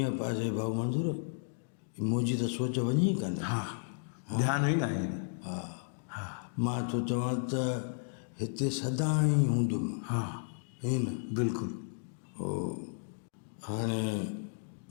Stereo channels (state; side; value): silent; right; digital silence